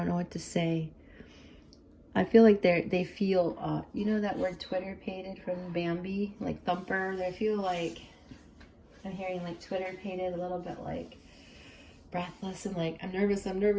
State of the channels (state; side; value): identical; both; correlation 1.00